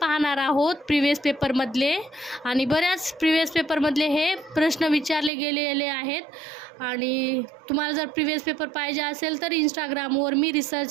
आहोत प्रिव्हियस पेपरमधले, आणि बऱ्याच प्रिव्हियस पेपरमधले हे प्रश्न विचारले गेलेले आहेत। आणि तुम्हाला जर प्रिव्हियस पेपर पाहिजे असेल तर इंस्टाग्रामवर मी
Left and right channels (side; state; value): left; drops out; at 5.3 s